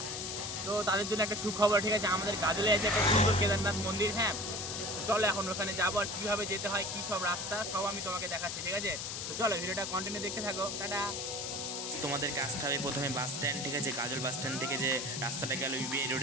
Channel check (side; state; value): left; noise; hiss, 4 dB below the sound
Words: তো তাদের জন্য একটা সুখবর, ঠিক আছে। আমাদের গাজলে আছে একটা সুন্দর কেদারনাথ মন্দির। হ্যাঁ, তো চলো এখন ওখানে যাবো, আর কীভাবে যেতে হয়, কী সব রাস্তা, সব আমি তোমাকে দেখাচ্ছি, ঠিক আছে। তো চলো ভিডিওটা কন্টিনিউ দেখতে থাকো। টাটা। তোমাদেরকে আসতে হবে প্রথমে বাস স্ট্যান্ড, ঠিক আছে। গাজল বাস স্ট্যান্ড থেকে যে রাস্তাটা গেল ইউবিআই